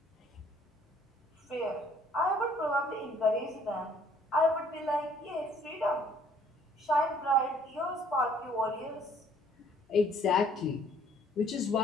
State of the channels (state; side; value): normal; both; correlation 0.60